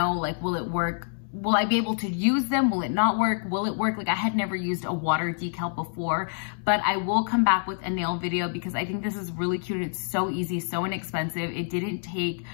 like, will it work? Will I be able to use them? Will it not work? Will it work? Like I had never used a water decal before, but I will come back with a nail video because I think this is really cute. It's so easy, so inexpensive. It didn't take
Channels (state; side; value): silent; right; 60 dB below the other